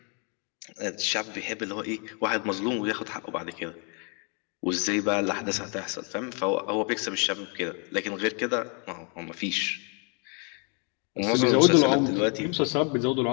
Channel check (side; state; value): right; quieter; 36.5 dB